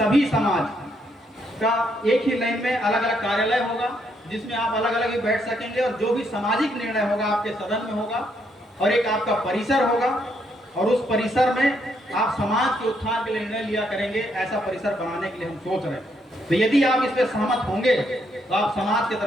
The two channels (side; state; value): both; normal; correlation 0.74